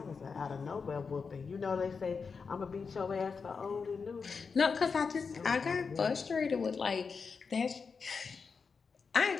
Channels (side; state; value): right; quieter; 5.3 dB